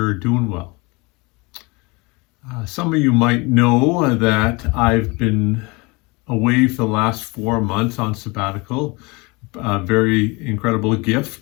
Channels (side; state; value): right; quieter; 26.7 dB